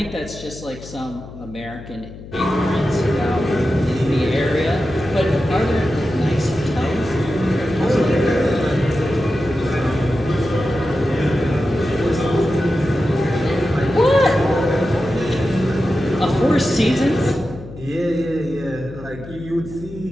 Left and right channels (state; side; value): noise; left; hum, 15 dB below the sound